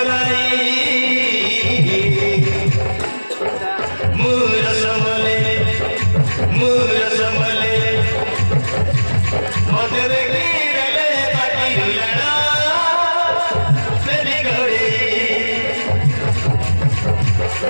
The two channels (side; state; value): both; inverted; correlation -1.00